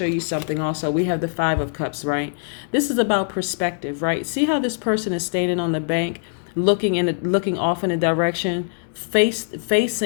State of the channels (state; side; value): silent; right; digital silence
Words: you something also. We have the Five of Cups, right? This is about perspective, right? See how this person is standing on the bank, looking off in a direction,